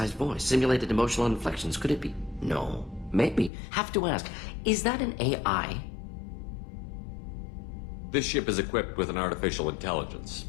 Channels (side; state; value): right; drops out; at 3.5 s